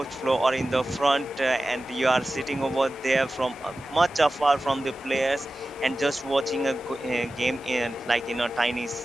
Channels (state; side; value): normal; both; correlation 0.95